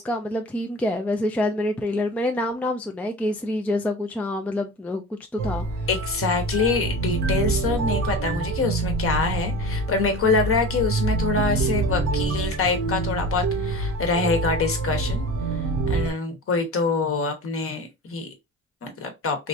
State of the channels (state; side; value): normal; both; correlation 0.34